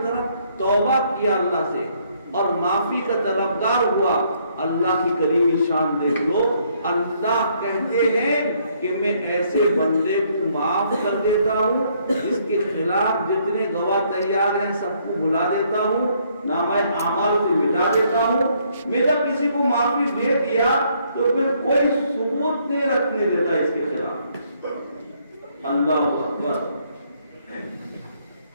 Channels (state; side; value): inverted; both; correlation -0.68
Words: طرف توبہ کیا اللہ سے اور معافی کا طلبگار ہوا، اللہ کی کریمی شان دیکھ لو، اللہ کہتے ہیں کہ میں ایسے بندے کو معاف کر دیتا ہوں جس کے خلاف جتنے گواہ تیار ہیں سب کو بلا دیتا ہوں، نامہ اعمال سے مٹا دیتا ہوں۔ میں جب کسی کو معافی دے دیا تو پھر کوئی ثبوت نہیں رکھنے دیتا اس کے خلاف۔ اللہ اکبر۔